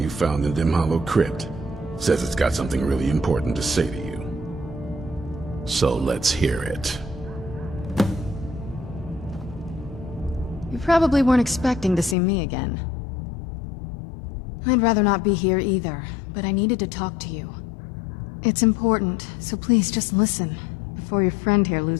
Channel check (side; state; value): right; drops out; at 12.2 s